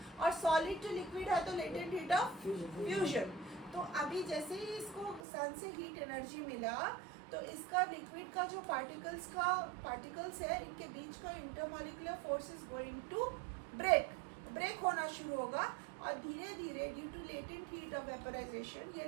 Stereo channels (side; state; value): left; drops out; at 5.2 s